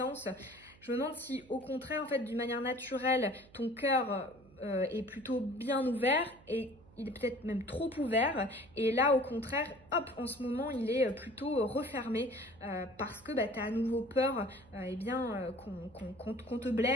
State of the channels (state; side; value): noise; right; hum, 25 dB below the sound